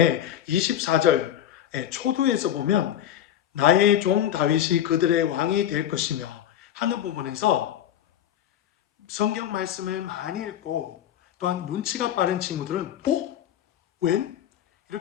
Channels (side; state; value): right; quieter; 10.9 dB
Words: 24절의 초두에서 보면 나의 종 다윗이 그들의 왕이 될 것이며 하는 부분에서 성경 말씀을 많이 읽고 또한 눈치가 빠른 친구들은 웬?